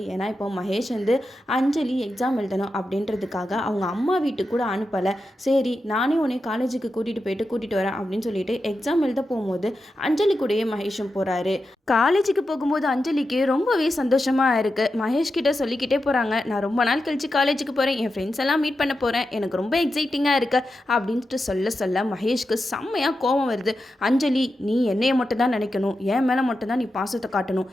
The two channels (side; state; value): both; normal; correlation 0.89